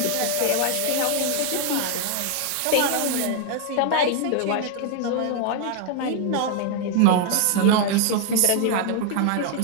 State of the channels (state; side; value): different; both; correlation 0.00